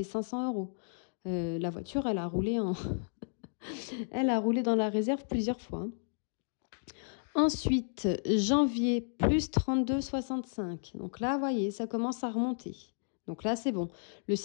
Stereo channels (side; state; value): right; silent; digital silence